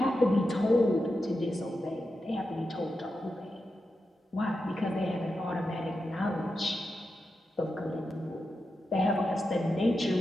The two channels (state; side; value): normal; both; correlation 0.89